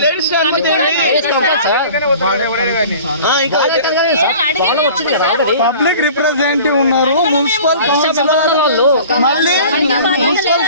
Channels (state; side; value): inverted; both; correlation -0.43